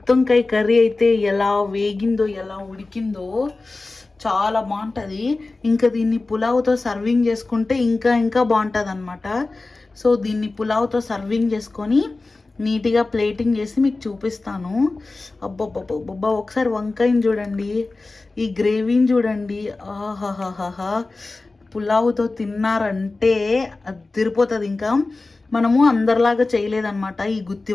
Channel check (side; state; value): right; quieter; 3.4 dB